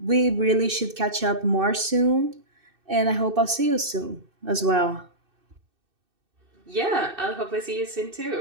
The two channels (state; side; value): late; left; 2.6 ms